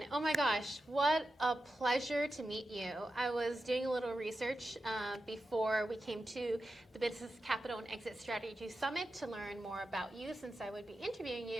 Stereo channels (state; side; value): normal; both; correlation 0.91